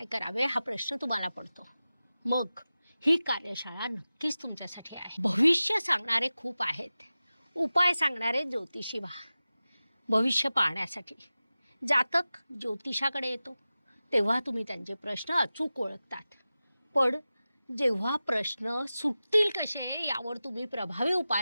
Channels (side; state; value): both; inverted; correlation -0.95